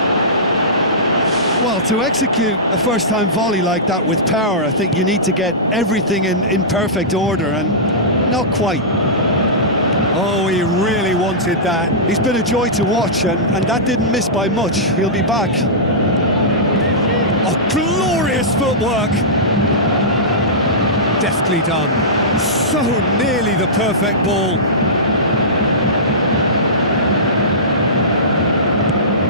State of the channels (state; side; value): normal; both; correlation -0.17